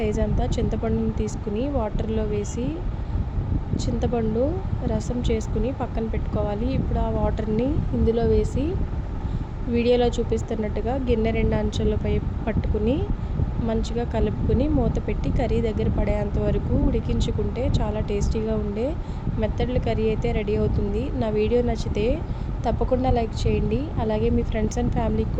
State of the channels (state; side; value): identical; both; correlation 1.00